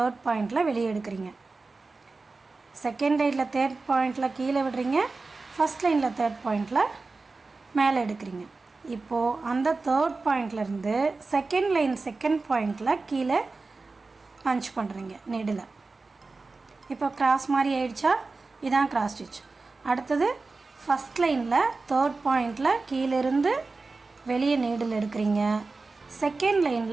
பாயிண்டில் வெளியே எடுக்கிறீங்க. செகண்ட் லைனில் தேர்ட் பாயிண்டில் கீழே விடுறீங்க, ஃபஸ்ட் லைனில் தேர்ட் பாயிண்டில் மேலே எடுக்கிறீங்க. இப்போது அந்த தேர்ட் பாயிண்ட்லேருந்து செகண்ட் லைன் செகண்ட் பாயிண்டில் கீழே பஞ்ச் பண்ணுறீங்க நீடில். இப்போ கிராஸ் மாதிரி ஆயிடுச்சா? இதான் கிராஸ் ஸ்டிச். அடுத்தது ஃபஸ்ட் லைனில் தேர்ட் பாயிண்டில் கீழேருந்து வெளியே நீடில் எடுக்கிறீங்க. செகண்ட்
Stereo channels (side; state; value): left; quieter; 3.8 dB